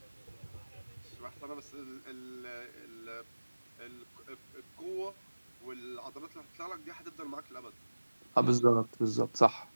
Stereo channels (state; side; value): inverted; both; correlation -1.00